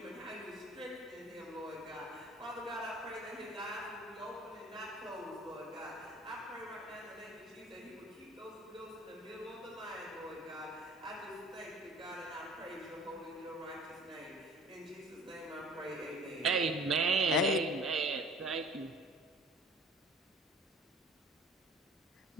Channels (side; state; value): both; normal; correlation 0.48